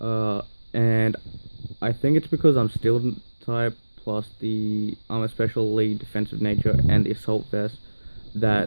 And I think it's because I'm Steel type, plus I'm especially defensive nature and the Assault Vest,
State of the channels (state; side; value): inverted; both; correlation -1.00